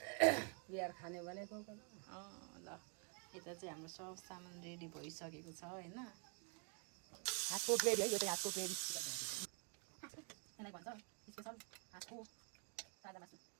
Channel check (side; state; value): left; quieter; 39.0 dB